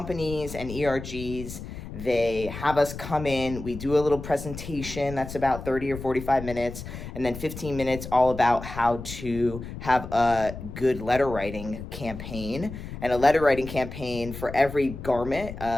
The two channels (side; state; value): left; noise; rumble, 10 dB below the sound